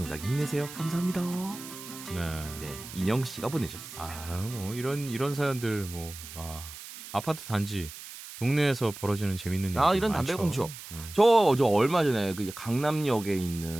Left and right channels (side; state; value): right; noise; hiss, 13 dB below the sound